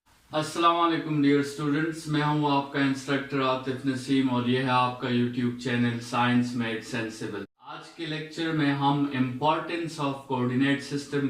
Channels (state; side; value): identical; both; correlation 1.00